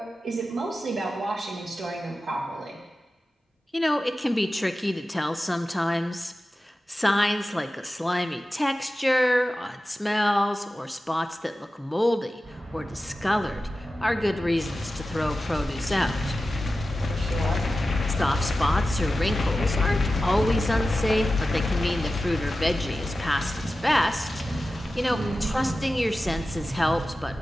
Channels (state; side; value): normal; both; correlation 0.94